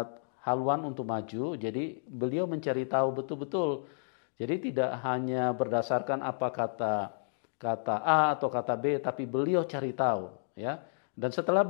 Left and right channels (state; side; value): silent; right; digital silence